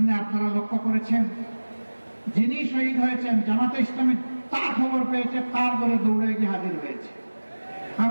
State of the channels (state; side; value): inverted; both; correlation -1.00